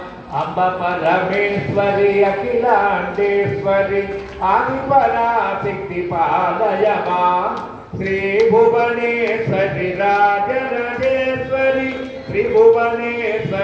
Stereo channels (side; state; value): both; identical; correlation 1.00